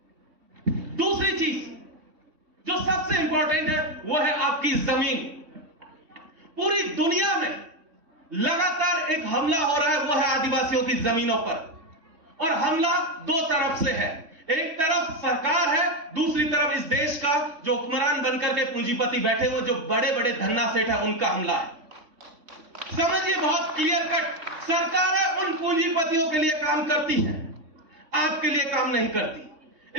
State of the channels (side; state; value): left; late; 3.5 ms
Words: दूसरी चीज जो सबसे इंपॉर्टेंट है वो है आपकी जमीन। पूरी दुनिया में लगातार एक हमला हो रहा है, वो है आदिवासियों की जमीनों पर। और हमला दो तरफ से है, एक तरफ सरकार है, दूसरी तरफ इस देश का जो हुक्मरान बनकर के पूंजीपति बैठे हुए जो बड़े बड़े धन्ना सेठ है, उनका हमला है। समझिए बहुत क्लियर कट, सरकार है उन पूंजीपतियों के लिए काम करती है, आपके लिए काम नहीं